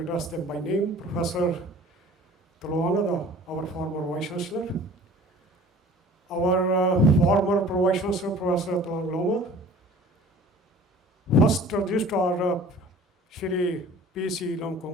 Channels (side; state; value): both; normal; correlation 0.46